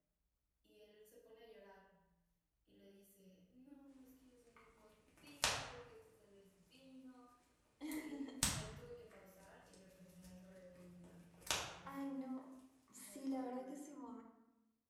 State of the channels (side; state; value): both; identical; correlation 1.00